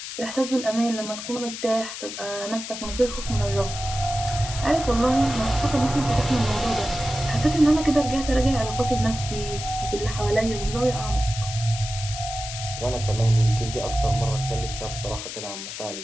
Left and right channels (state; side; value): noise; left; hiss, 8 dB below the sound